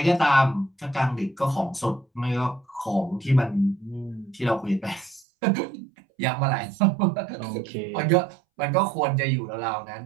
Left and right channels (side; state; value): left; drops out; at 5.2 s